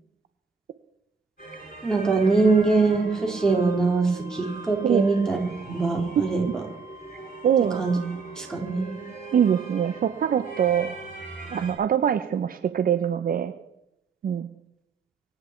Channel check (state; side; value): quieter; left; 5.2 dB